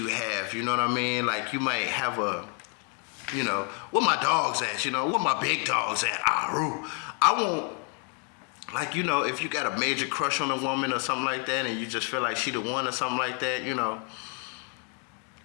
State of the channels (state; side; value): quieter; right; 38.9 dB